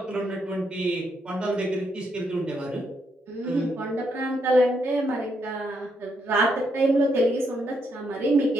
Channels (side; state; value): both; normal; correlation 0.77